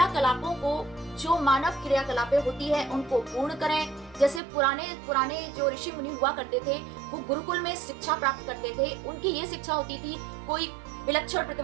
को, जो मानव क्रियाकलापें होती है, उनको पूर्ण करें। जैसे पुराने जो ऋषि मुनि हुआ करते थे, वो गुरुकुल में शिक्षा प्राप्त करते थे। उनकी ये शिक्षा होती थी, कोई विलक्षण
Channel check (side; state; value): left; drops out; at 4.4 s